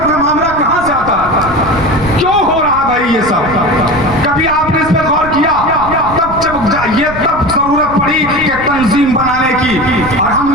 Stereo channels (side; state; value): right; noise; rumble, 13 dB below the sound